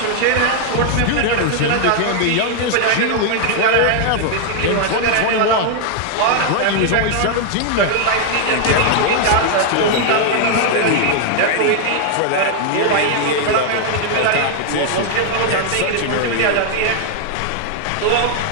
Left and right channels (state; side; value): different; both; correlation 0.00